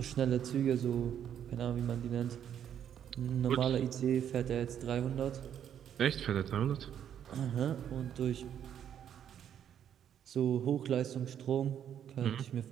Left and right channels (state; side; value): quieter; left; 9.4 dB